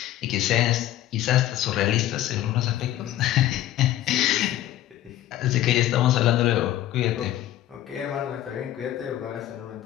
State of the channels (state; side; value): quieter; right; 13.6 dB